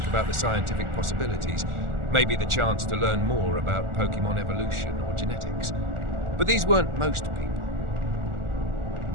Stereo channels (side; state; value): left; late; 1.4 ms